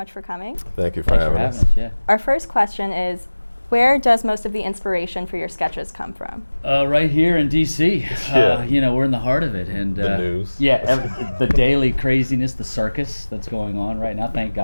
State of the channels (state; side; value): inverted; both; correlation -1.00